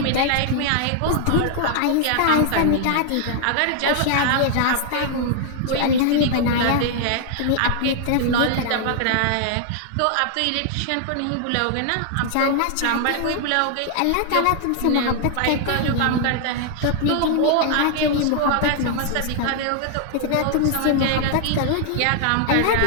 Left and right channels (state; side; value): different; both; correlation 0.00